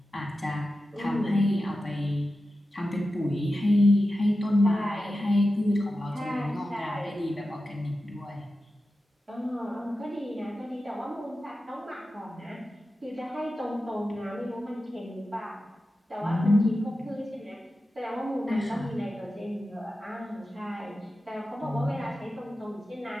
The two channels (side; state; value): both; normal; correlation 0.93